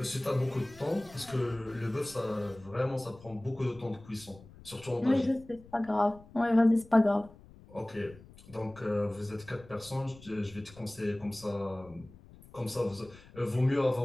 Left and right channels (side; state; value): left; noise; rumble, 21 dB below the sound